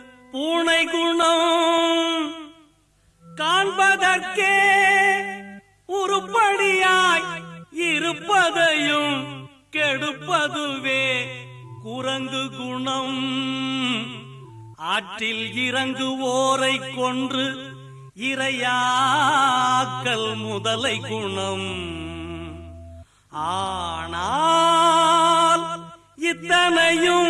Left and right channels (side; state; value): both; identical; correlation 1.00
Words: பூனை குணம். காண்பதற்கே உருப்படியாய் இருப்பதையும் கெடுப்பதுவே குரங்கு குணம். ஆற்றில் இறங்குவோரை கொன்று இரையாக்கல் முதலை குணம். ஆனால்